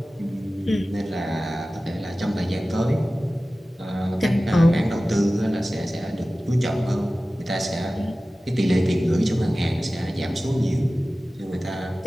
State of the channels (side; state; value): both; normal; correlation 0.96